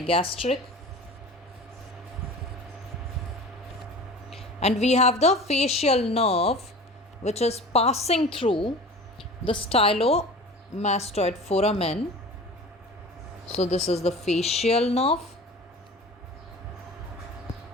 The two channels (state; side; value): normal; both; correlation 0.39